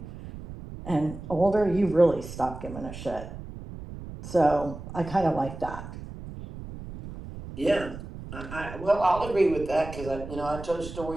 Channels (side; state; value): right; noise; rumble, 12 dB below the sound